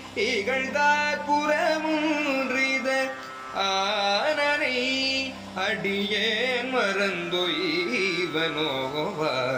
இகழ்ந்தார் புறமுன்றித ஆனனை அடியேன் மறந்தொய்வனோவானை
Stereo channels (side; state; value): both; identical; correlation 1.00